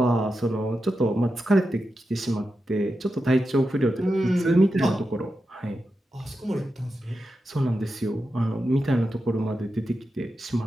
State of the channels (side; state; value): both; normal; correlation 0.89